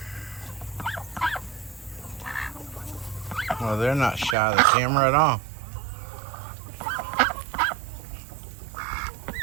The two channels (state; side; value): drops out; left; at 4.4 s